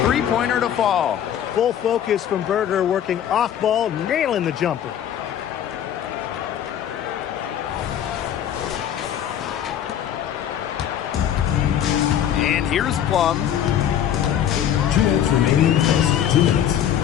three-pointer to fall. Full focus from Berger, working off ball, nailing the jumper. And here's Plum. 2 minutes remaining in the first. 2 minutes.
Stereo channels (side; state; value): right; quieter; 10.1 dB